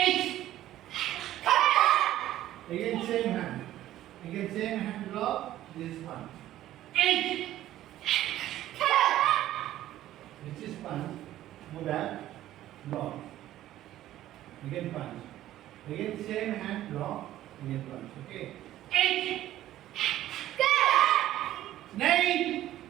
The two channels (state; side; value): quieter; left; 13.6 dB